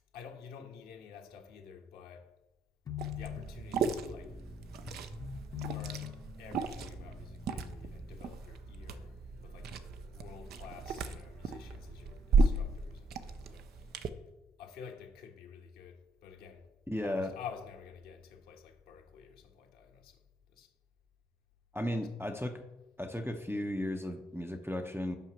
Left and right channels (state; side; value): normal; both; correlation 0.73